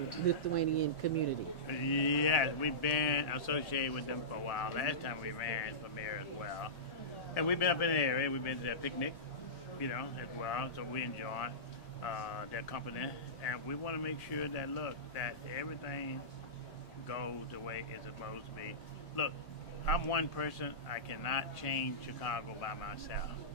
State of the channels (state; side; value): late; right; 1.9 ms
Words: Lithuanian community. Yes, we've been associated with them for a while. Last time we ran for mayor as well. And we've been up in the area. We've been to that picnic, as well, so we enjoy it. their company, and we want to make sure that that everything goes the way it's supposed to be. Look, I'm one person. I cannot change Chicago by myself.